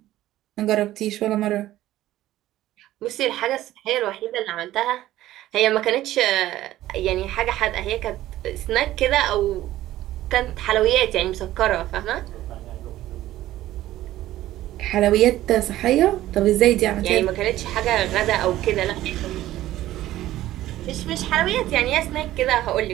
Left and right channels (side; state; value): left; quieter; 14.6 dB